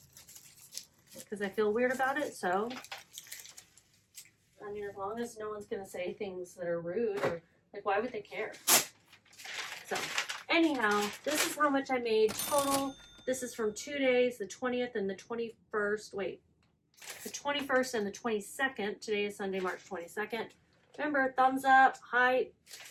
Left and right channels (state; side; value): identical; both; correlation 1.00